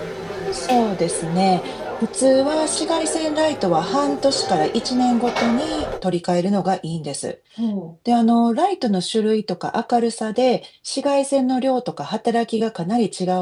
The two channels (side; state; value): both; identical; correlation 1.00